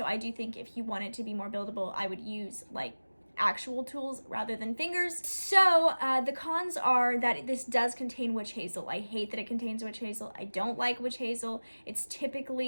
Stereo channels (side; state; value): both; inverted; correlation -1.00